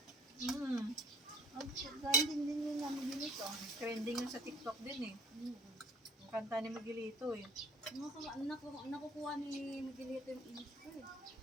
Mm. Trending din yun namin dito. Trending yun sa TikTok din eh. Ang kanta ni Miguelito eh. Nakukuha ni Miguelito yung inis ko eh.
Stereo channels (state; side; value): normal; both; correlation 0.49